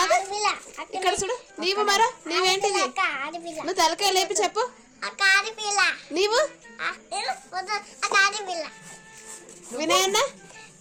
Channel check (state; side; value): identical; both; correlation 1.00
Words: ఇక్కడ చూడు. నీవు మరా నీవేంటిది? నువ్వు తలకాయ లేపి చెప్పు. నీవు వినయన్న?